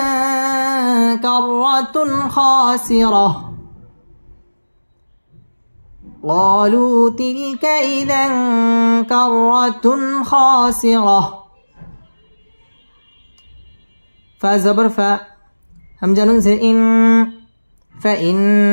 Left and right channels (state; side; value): inverted; both; correlation -1.00